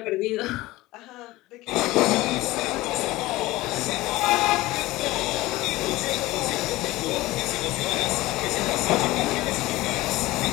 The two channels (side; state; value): right; quieter; 18.8 dB